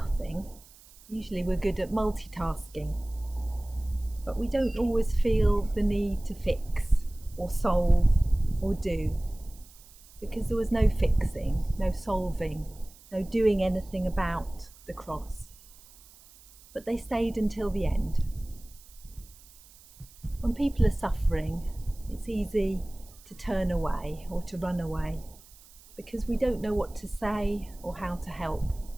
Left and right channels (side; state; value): right; noise; hiss, 23 dB below the sound